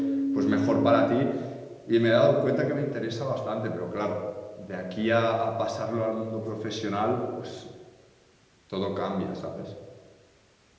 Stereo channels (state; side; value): identical; both; correlation 1.00